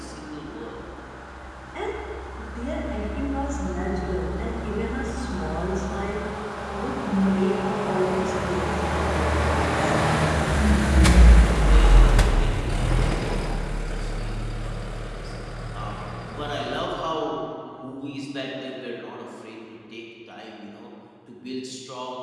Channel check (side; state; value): both; identical; correlation 1.00